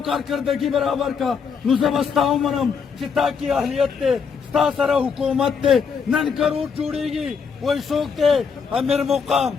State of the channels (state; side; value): quieter; right; 6.1 dB